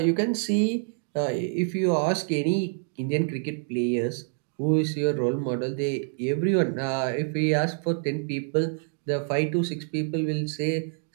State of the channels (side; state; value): left; silent; 60 dB below the other